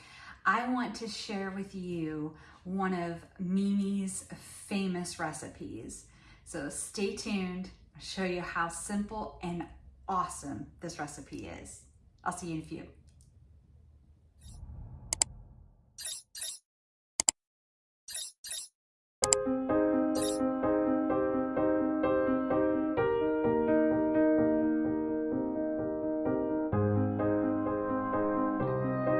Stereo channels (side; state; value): both; identical; correlation 1.00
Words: I want to share with you one of Mimi's famous recipes. So stay tuned, I'll show you how simple and awesome this recipe is. I'll see you in a few.